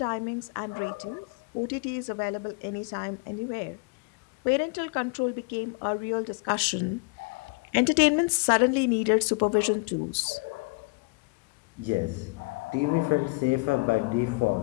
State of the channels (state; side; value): quieter; right; 28.8 dB